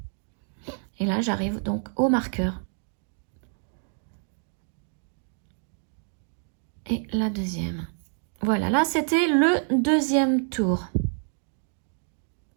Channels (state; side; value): silent; left; 60 dB below the other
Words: Et là j'arrive donc au marqueur. Et la deuxième. Voilà, là c'était le deuxième tour.